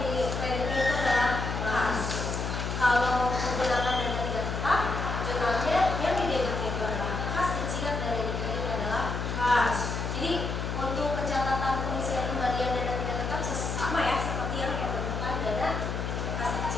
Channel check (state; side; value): noise; left; hum, 3 dB below the sound